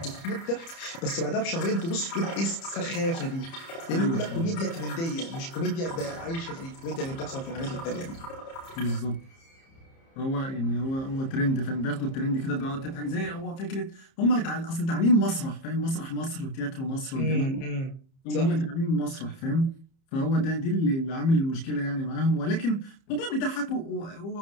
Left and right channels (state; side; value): late; right; 30 ms